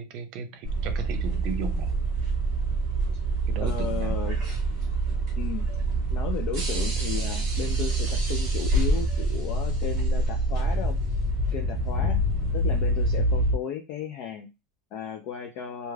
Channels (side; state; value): both; normal; correlation 0.38